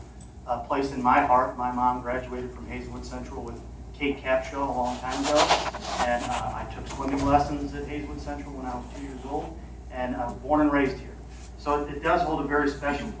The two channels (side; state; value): both; identical; correlation 1.00